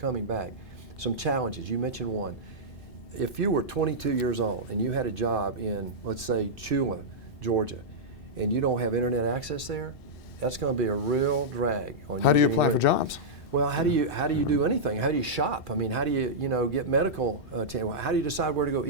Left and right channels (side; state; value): both; normal; correlation -0.10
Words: back. Some challenges, you mentioned one. If you were 22 years old and you had a job in, let's say, Chula, Georgia, and you don't have internet access there, that's going to be a real drag on you. How do you apply for jobs? Well, how do you do anything? How do you shop? I mean, how do you get medical how do you decide where to go